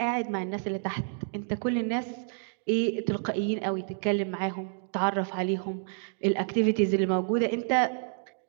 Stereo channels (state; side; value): silent; left; digital silence